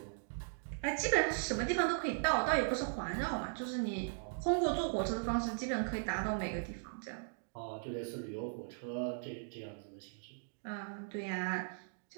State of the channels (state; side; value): silent; left; digital silence